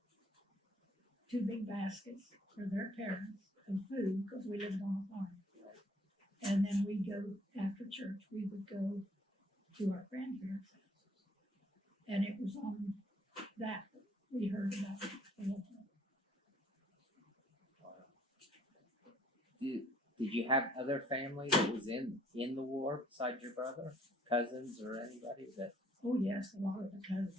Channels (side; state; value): both; normal; correlation 0.62